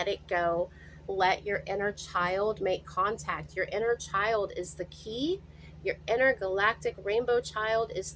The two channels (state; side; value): identical; both; correlation 1.00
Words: it go. Let your inner child make contact. Your inner child is the key. Your intergalactic rainbow child is